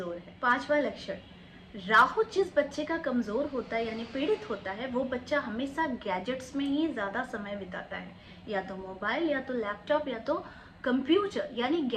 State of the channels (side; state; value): both; identical; correlation 1.00